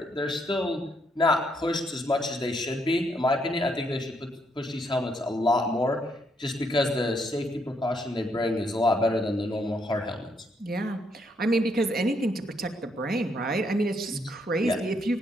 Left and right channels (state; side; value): normal; both; correlation 0.74